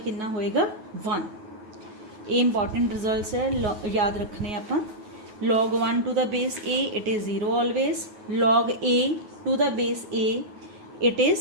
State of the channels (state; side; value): late; left; 9.3 ms